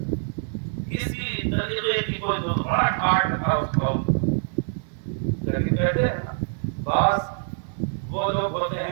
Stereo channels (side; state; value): left; silent; digital silence